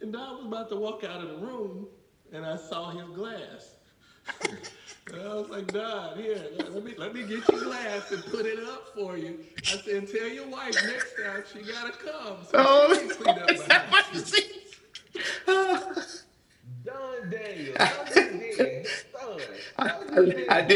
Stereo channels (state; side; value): identical; both; correlation 1.00